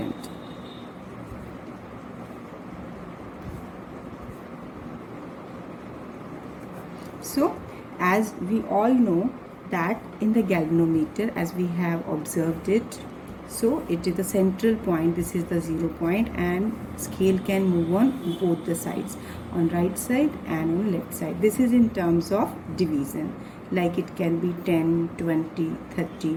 So, as we all know that in the galvanometer, as we have observed it, so it is the central point, this is the 0 point, and scale can move on both the sides, on right side and on left side. This is in terms of division, like it can be 10, 20,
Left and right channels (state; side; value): identical; both; correlation 1.00